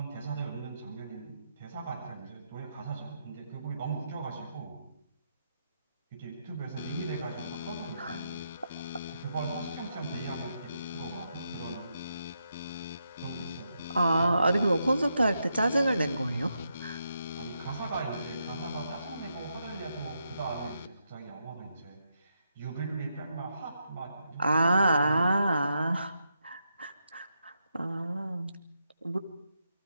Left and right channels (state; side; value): inverted; both; correlation -0.82